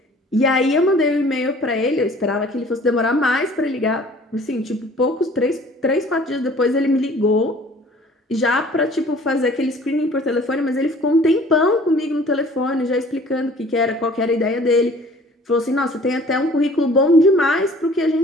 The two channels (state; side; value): normal; both; correlation 0.51